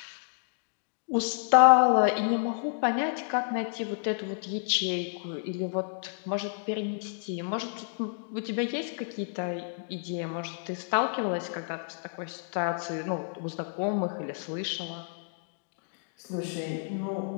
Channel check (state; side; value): silent; right; digital silence